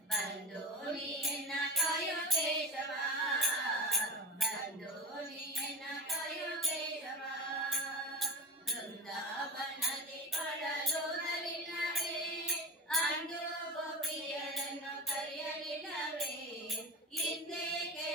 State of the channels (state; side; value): normal; both; correlation 0.29